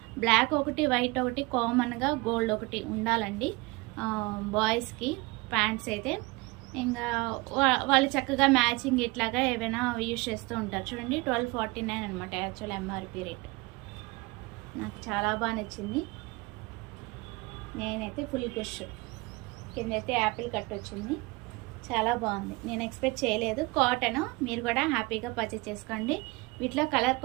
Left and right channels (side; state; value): left; quieter; 24.4 dB